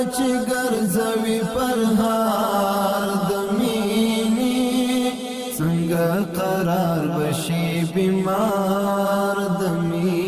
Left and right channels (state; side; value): identical; both; correlation 1.00